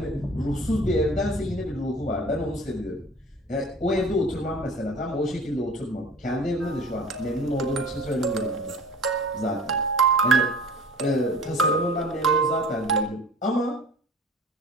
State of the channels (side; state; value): both; normal; correlation 0.43